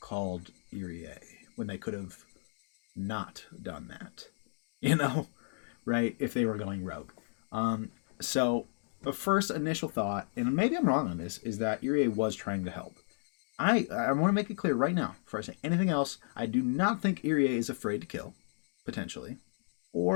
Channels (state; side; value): silent; right; digital silence